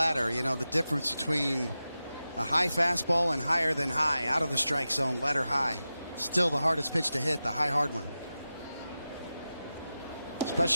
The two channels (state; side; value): inverted; both; correlation -0.93